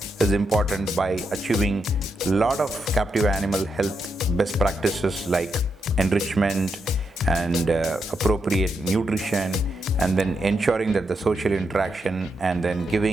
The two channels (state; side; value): normal; both; correlation 0.83